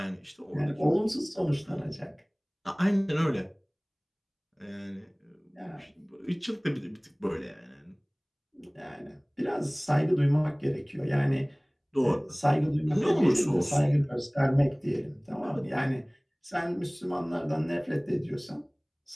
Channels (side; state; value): both; identical; correlation 1.00